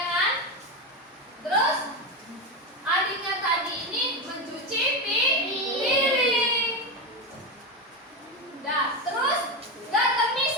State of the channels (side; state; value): both; normal; correlation 0.15